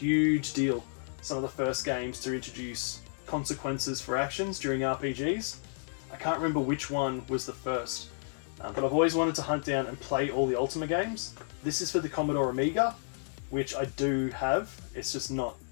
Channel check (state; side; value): silent; right; 57 dB below the other